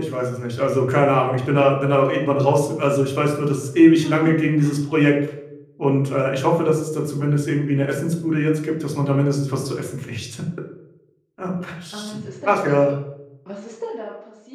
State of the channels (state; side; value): identical; both; correlation 1.00